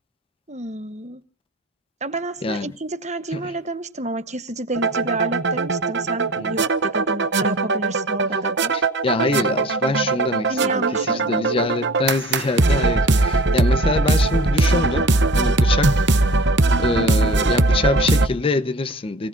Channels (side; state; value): both; normal; correlation 0.43